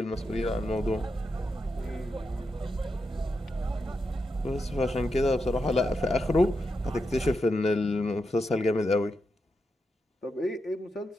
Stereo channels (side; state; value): both; normal; correlation 0.86